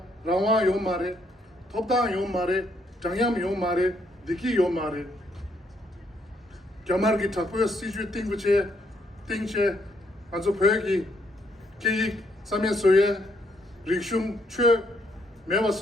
rawa yo mare thopda yo mare changyam yo mare diki yo mare kyamar gi thakwe siju tingche azo phegi ki samye soye rikshum chwe mewa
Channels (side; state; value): both; normal; correlation 0.73